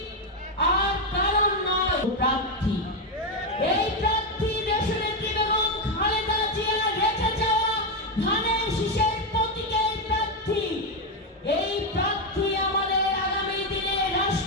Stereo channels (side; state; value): both; normal; correlation 0.07